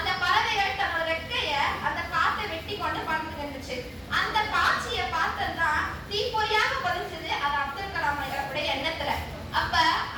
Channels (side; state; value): both; identical; correlation 1.00